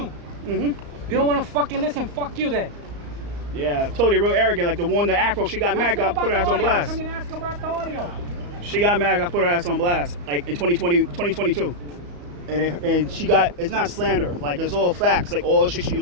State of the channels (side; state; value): left; late; 34 ms